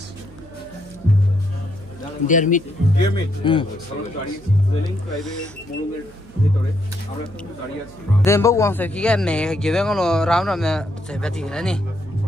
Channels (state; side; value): noise; right; hum, 22 dB below the sound